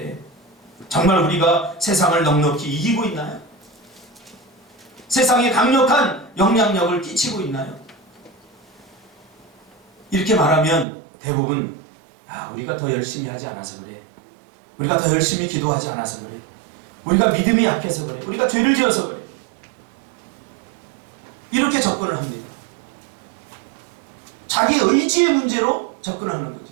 정말 우리가 세상을 넉넉히 이기고 있나요? 세상에 강력한 영향력을 끼치고 있나요? 이렇게 말하면 대부분 우리가 더 열심히 하지 않아서 그래. 우리가 더 열심히 기도하지 않아서 그래. 우리가 믿음이 약해서 그래. 우리가 죄를 지어서 그래. 이렇게 접근을 합니다. 자기 의지의 문제로 접근하는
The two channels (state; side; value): drops out; left; at 10.9 s